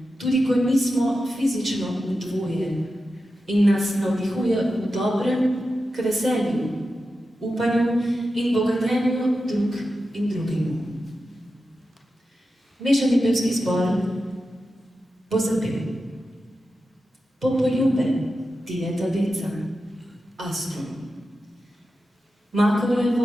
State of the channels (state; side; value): normal; both; correlation 0.91